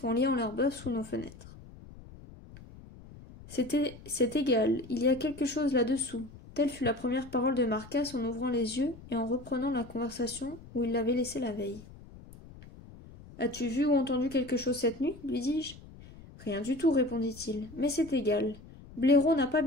en liant leurs bœufs sous nos fenêtres. C'est égal, il y a quelque chose là-dessous. Telle fut la première parole de Marcasse en ouvrant les yeux et en reprenant la conversation où il l'avait laissée la veille. « As-tu vu ou entendu quelque chose cette nuit ?» lui dis-je. « Rien du tout, répondit-il, mais c'est égal. Blaireau n'a pas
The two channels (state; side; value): noise; left; rumble, 19 dB below the sound